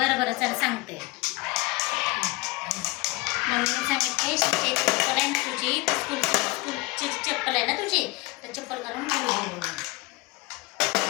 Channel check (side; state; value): right; quieter; 23.3 dB